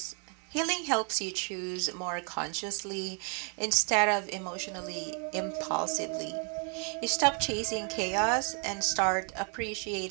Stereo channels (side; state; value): left; quieter; 39.8 dB